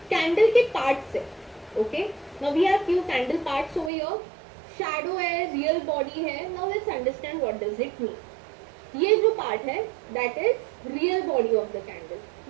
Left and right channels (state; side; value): drops out; left; at 3.9 s